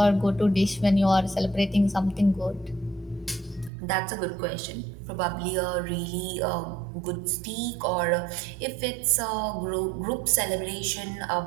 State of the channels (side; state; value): left; drops out; at 3.7 s